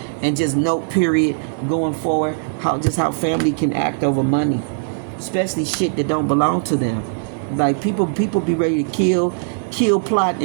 and just note, period, going forward, how family can act over money, especially shit that don't belong to them. Like people be ready to kill, plot,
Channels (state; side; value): silent; left; 58 dB below the other